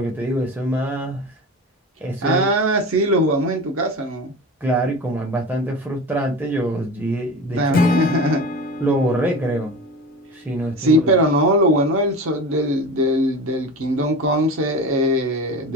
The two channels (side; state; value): both; normal; correlation 0.31